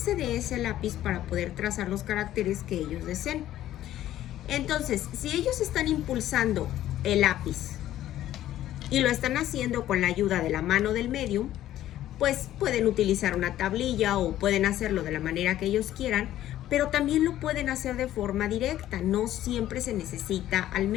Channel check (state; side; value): quieter; right; 13.1 dB